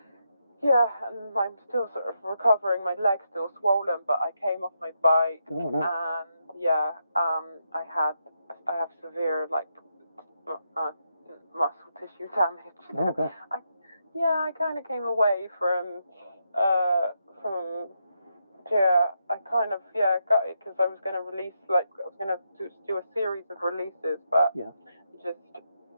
Yeah, and I'm still sort of recovering. My leg's still swollen, but I came off my bike. Oh, no. And I have severe muscle tissue damage. Oh, gosh. I kind of came away from I kind of got it because I was going to release I was going to do a series of releases, but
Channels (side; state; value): both; inverted; correlation -0.82